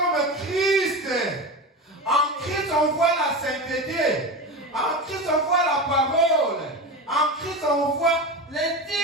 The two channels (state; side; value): normal; both; correlation 0.24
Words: Christ. En Christ, on voit la sainteté. En Christ, on voit la parole. En Christ, on voit